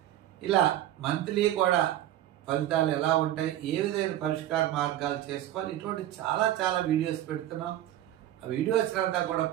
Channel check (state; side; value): quieter; left; 12.9 dB